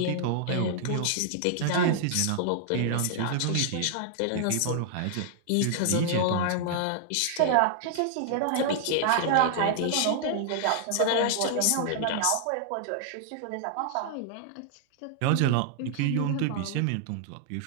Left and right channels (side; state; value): both; different; correlation -0.01